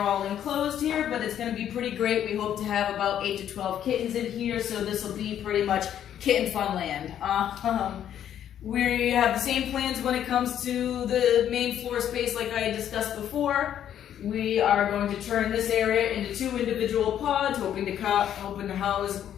all enclosed here, but it's going to be pretty great. We hope to have about 8 to 12 kittens in here, so this will be pretty much kitten fun land. We have the same plans when it comes to the main floor space like I discussed before. We are going to turn this area into 2 individual pods, hoping to house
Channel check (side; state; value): right; quieter; 10.2 dB